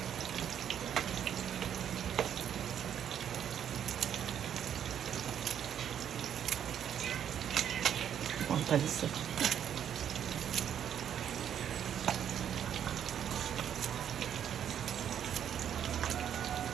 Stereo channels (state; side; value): quieter; left; 9.3 dB